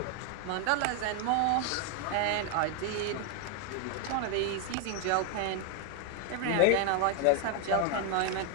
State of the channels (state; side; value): different; both; correlation 0.01